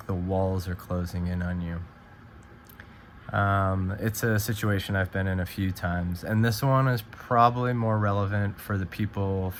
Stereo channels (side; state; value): both; identical; correlation 1.00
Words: the walls are closing in on you. It's a situation I've been in a few times, and this one is probably more relevant for